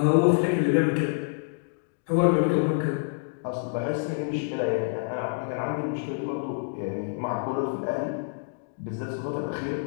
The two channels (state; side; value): silent; right; digital silence